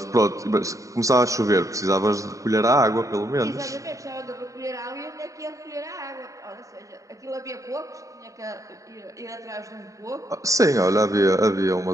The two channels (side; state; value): left; late; 0.16 ms